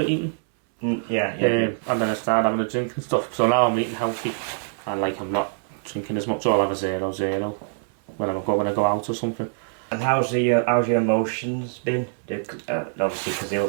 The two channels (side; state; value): left; silent; 62 dB below the other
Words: eating. And then I started having a drink and stuff. So now I'm eating healthy, and like I'm not drinking as much. I'll have a 0-0 when I go out or something. And how's your emotions been? Obviously, because